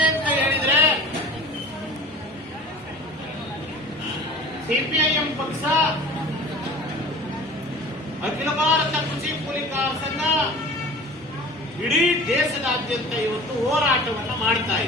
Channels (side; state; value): both; normal; correlation 0.41